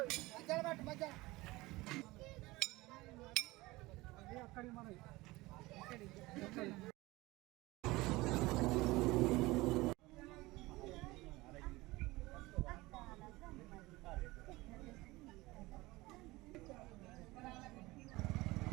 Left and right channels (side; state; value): left; quieter; 20.6 dB